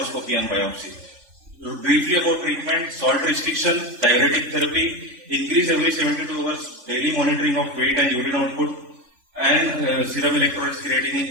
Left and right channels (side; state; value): left; late; 3.5 ms